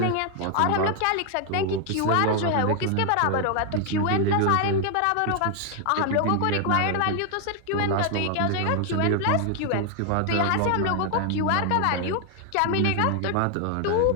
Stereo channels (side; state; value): both; different; correlation 0.00